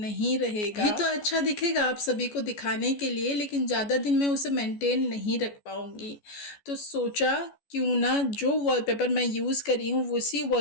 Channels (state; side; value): late; right; 14 ms